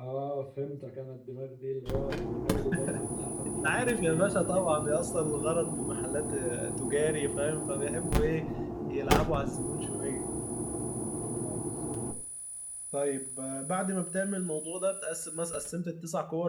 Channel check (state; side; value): identical; both; correlation 1.00